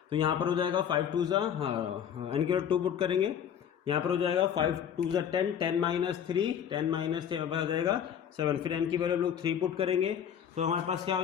तो यहाँ पर हो जाएगा 5 2 ज़ा, हाँ n की वैल्यू 2 पुट करेंगे, यहाँ पर हो जाएगा 5 2 ज़ा 10, 10 - 3, 10 - 3 आ जाएगा 7। फिर n की वैल्यू हम लोग 3 पुट करेंगे, तो हमारे पास क्या हो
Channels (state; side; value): quieter; right; 8.8 dB